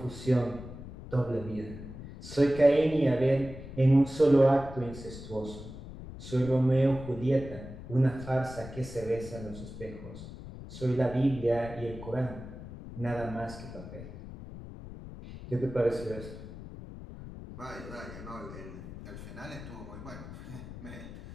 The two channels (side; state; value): left; noise; rumble, 12 dB below the sound